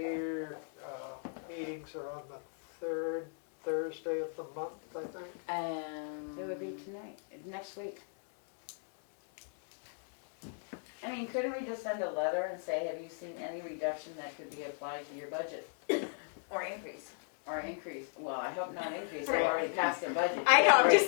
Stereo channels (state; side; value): silent; right; 53 dB below the other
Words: meetings are on the third Thursday of the month, I think. It would be tonight, next week. I mean, couldn't we just send a letter and say, have you seen any reduction that could be applied to your budget? Or increase. Or increase? Well, I hope not increase, they've already passed their budget. I know, I'm